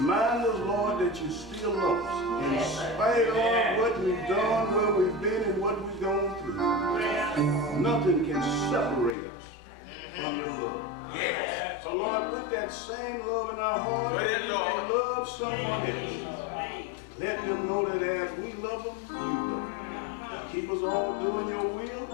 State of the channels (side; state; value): right; drops out; at 9.2 s